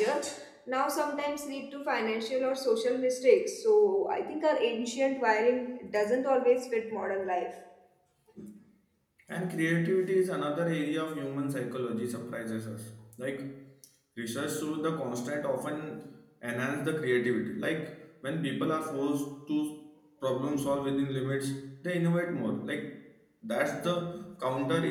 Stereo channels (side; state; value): both; identical; correlation 1.00